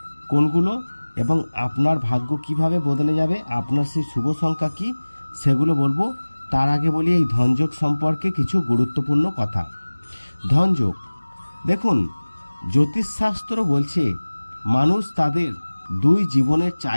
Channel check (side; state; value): both; inverted; correlation -1.00